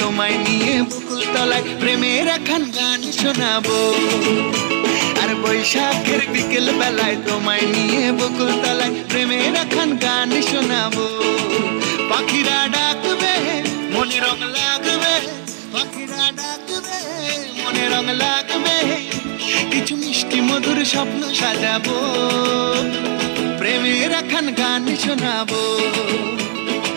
নিয়ে বকুল তলায় প্রেমের এখন গান শোনাবো। আর বৈশাখের বিকেল বেলায় তোমায় নিয়ে বকুল তলায় প্রেমের এখন গান শোনাবো। পাখিরা ডাকবে মনে রং লাগবে, পাখিরা ডাকবে মনে রং লাগবে, কিছু মিষ্টি মধুর স্বপ্ন সাজাবো, প্রেমের এখন গান শোনাবো।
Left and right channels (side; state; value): left; silent; digital silence